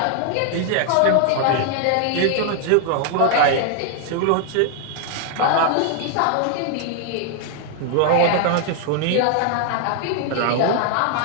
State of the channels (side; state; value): both; different; correlation 0.00